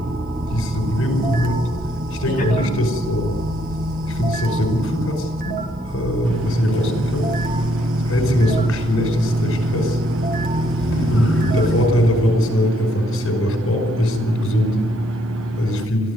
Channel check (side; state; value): both; normal; correlation 0.71